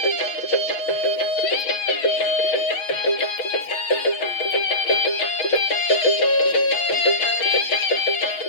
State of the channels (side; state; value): right; late; 6.1 ms